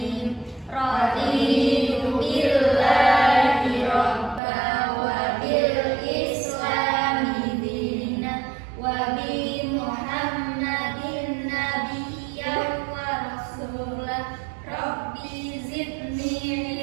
Raditu billahi robba wa bil islami dina wa bi Muhammadin nabiyyan wa rasulah. Rabbi zidni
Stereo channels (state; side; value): drops out; left; at 4.4 s